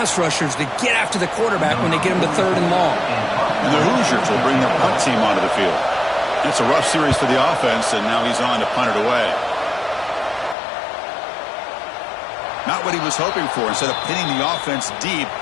rushers to get after the quarterback when they get them to 3rd and long. And the Hoosiers will bring their punt team onto the field. It's a rough series for the offense, and now he's on to punt it away. Not what he was hoping for. Instead of pinning the offense deep,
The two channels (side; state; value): right; drops out; at 10.6 s